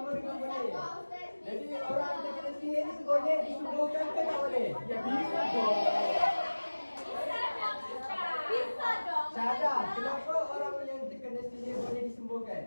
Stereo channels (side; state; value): both; inverted; correlation -1.00